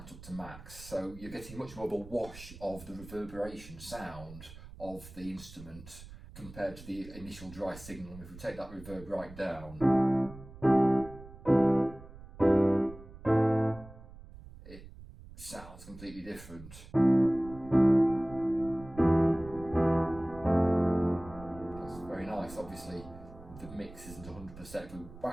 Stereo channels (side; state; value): right; noise; rumble, 17 dB below the sound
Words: up to max, so you're getting much more of a wash of the reverberation sound of the instrument compared to the initial dry signal. And if we take that reverb right down, it sounds completely different. That's very nice. Obviously the mix isn't 100%, if we